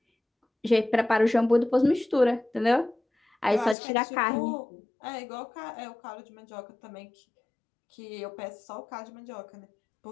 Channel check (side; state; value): right; drops out; at 3.8 s